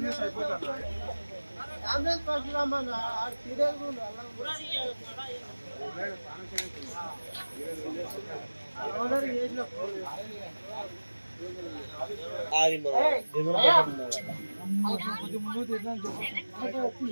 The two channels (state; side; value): inverted; both; correlation -1.00